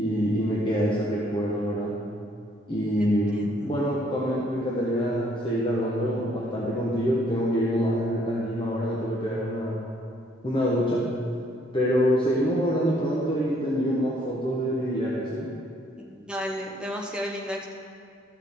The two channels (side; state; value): both; normal; correlation 0.66